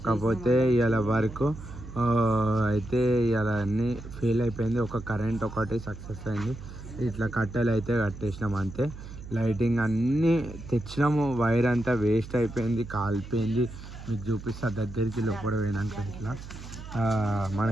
కాకపోతే ఇవాళ వర్క్ అయితే ఇవాళ అన్నీ ఫెయిల్ అయిపోయింది. ఒక కరెంట్ ఒకటి సక్సెస్ అయింది. ఇట్లా కట్టెలు అయితే కట్టేసినాము అంతే. లైటింగ్ అన్నీ తెచ్చినాము, వైర్ అంతా వేస్ట్ అయిపోయింది, కాలిపోయింది. మీకు చూపిస్తా దగ్గరికి లోపల పోయినాక. ఇట్లా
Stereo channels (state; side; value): noise; right; hum, 13 dB below the sound